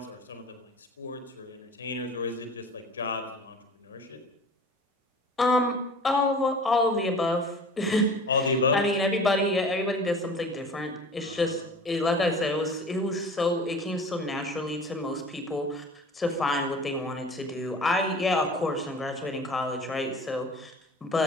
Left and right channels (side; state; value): both; normal; correlation 0.42